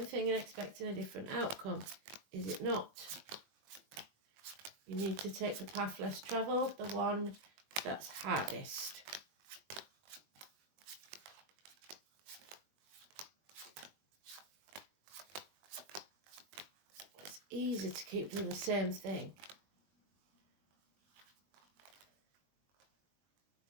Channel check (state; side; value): late; left; 20 ms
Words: thing and expecting a different outcome. Is it not? You need to take the path less travelled, the one that's hardest. It's easy to keep doing the same thing.